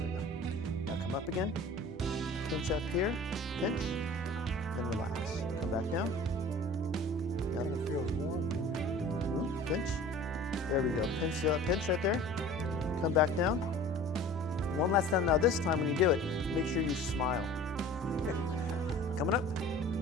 There we go. Now come up again. Pinch up here. Pinch. Then relax. Come back down. Now It feels warm. Pinch. There we go. Pinch, pinch right there. Come back down. One last time. Now this time when you do it, make sure you smile. Coming up.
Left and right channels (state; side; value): normal; both; correlation 0.43